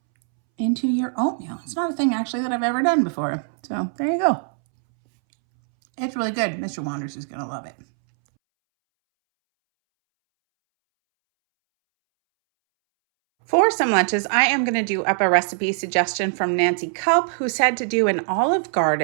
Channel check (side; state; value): left; silent; 64 dB below the other